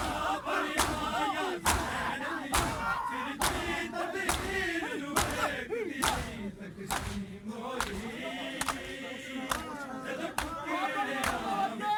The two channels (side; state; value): both; identical; correlation 1.00